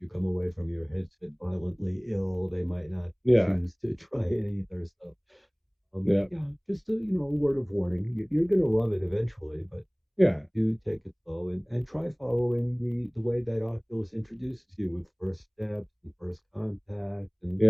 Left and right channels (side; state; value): both; identical; correlation 1.00